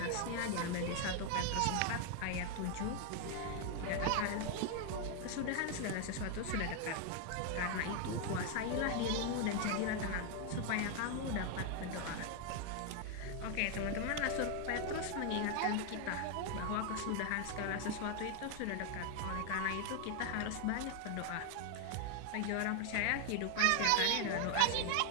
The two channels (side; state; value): both; different; correlation 0.01